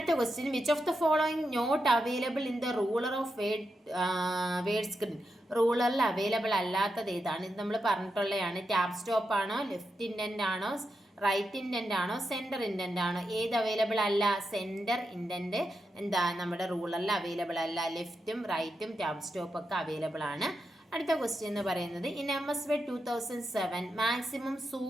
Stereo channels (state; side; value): normal; both; correlation 0.86